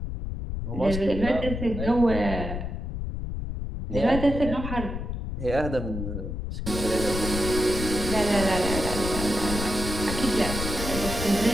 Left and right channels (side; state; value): left; noise; rumble, 5 dB below the sound